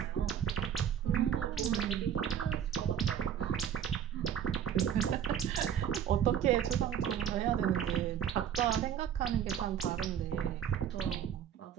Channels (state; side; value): quieter; left; 9.1 dB